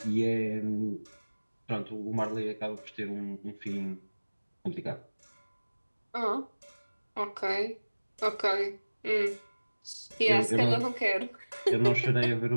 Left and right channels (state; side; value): inverted; both; correlation -1.00